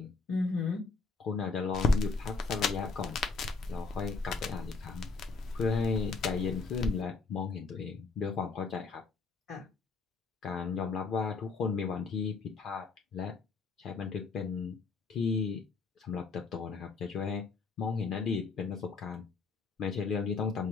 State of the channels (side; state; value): right; quieter; 4.5 dB